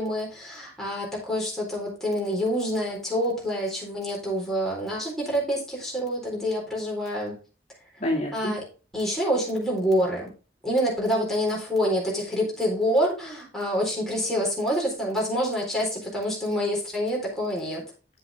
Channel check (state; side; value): normal; both; correlation 0.51